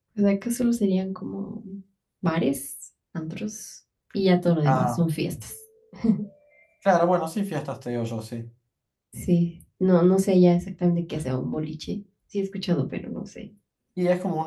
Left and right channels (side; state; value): both; identical; correlation 1.00